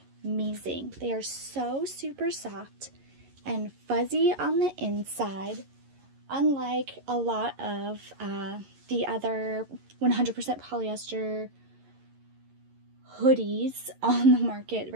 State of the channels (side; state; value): left; late; 11 ms